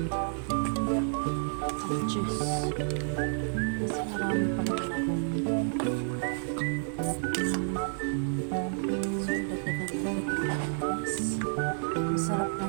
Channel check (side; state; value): left; silent; digital silence